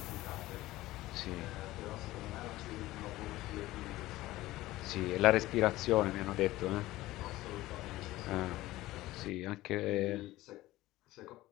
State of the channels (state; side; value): quieter; right; 17.2 dB